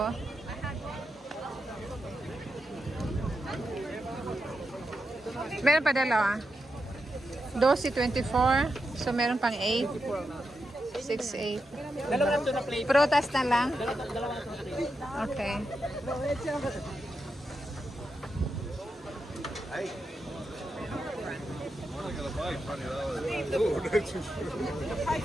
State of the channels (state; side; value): normal; both; correlation 0.87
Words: Meron pa dalawa. 12.24. So meron pang 8. 6, 8. Dalawa ito na plate. Prutas na lang? Dalawa ito na plate. Okay.